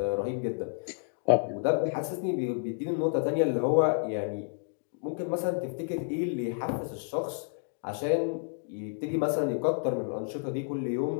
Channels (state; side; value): silent; right; digital silence